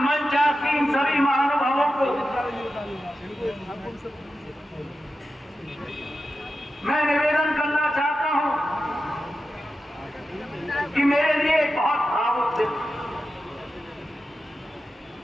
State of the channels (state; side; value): normal; both; correlation 0.91